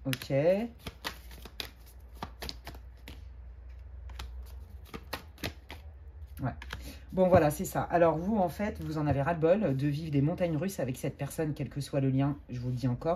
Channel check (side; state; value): both; identical; correlation 1.00